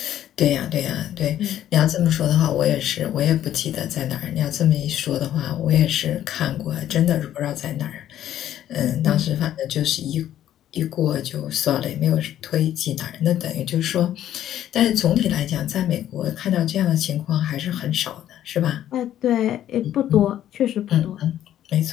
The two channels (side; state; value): right; quieter; 11.7 dB